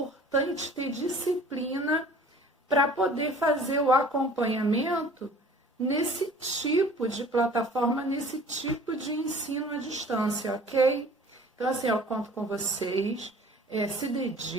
ter disciplina para poder fazer o acompanhamento nesse tipo de plataforma, nesse tipo de ensino à distância, ok? Então, assim, eu conto com vocês, se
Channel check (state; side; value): normal; both; correlation 0.48